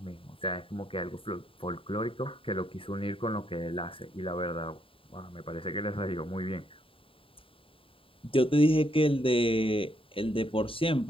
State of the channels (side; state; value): right; late; 0.26 ms